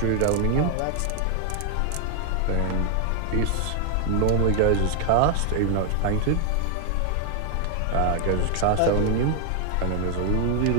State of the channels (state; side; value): different; both; correlation 0.00